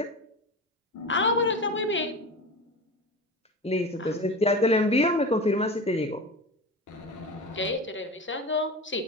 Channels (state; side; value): normal; both; correlation 0.29